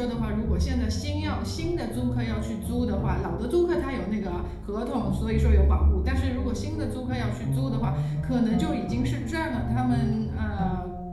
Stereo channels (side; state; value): both; identical; correlation 1.00